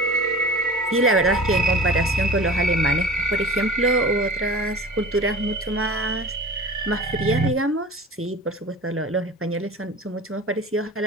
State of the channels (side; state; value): both; normal; correlation 0.38